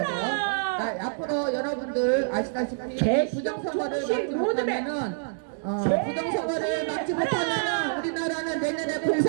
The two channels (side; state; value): left; silent; digital silence